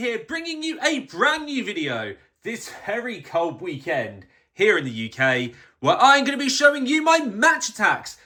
bringing you a brand new video this very cold weekend here in the UK, where I'm going to be showing you my Match Attax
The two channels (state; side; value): identical; both; correlation 1.00